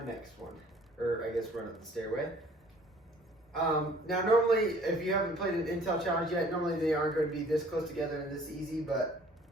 next one, or I guess run up the stairway. Now normally, if you haven't played an Intel challenge yet, normally they aren't going to be this close together and this easy, but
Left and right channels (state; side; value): normal; both; correlation 0.54